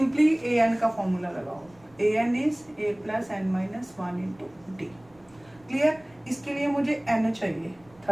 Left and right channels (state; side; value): noise; right; rumble, 29 dB below the sound